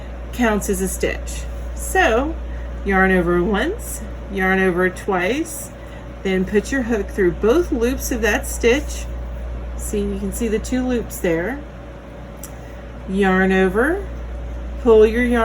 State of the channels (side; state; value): both; identical; correlation 1.00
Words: counts as a stitch. So yarn over once, yarn over twice, then put your hook through both loops of that stitch. See, you can see the 2 loops there. Yarn over, pull your